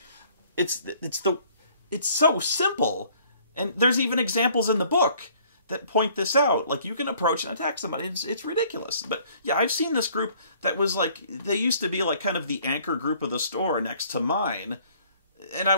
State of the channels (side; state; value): both; inverted; correlation -0.58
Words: It's so simple. And there's even examples in the book that point this out. Like, you can approach and attack somebody. It's ridiculous. But yeah, I've seen this group that was like, they used to be like kind of the anchor group of the store next to mine. And I